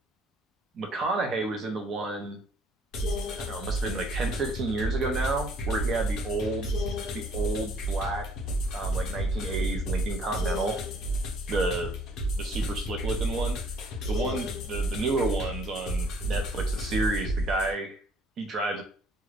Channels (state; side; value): normal; both; correlation 0.60